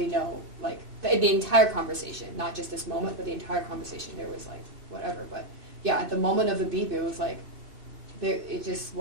know, like, the entire conversation, not just this moment, but the entire conversation, there was like, whatever. But yeah, at the moment of the beep, it was like, it just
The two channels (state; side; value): late; left; 2.5 ms